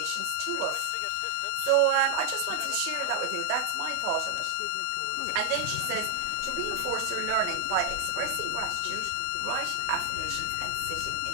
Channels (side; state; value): both; different; correlation 0.00